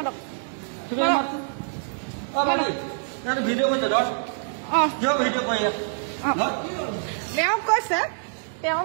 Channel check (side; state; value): left; silent; digital silence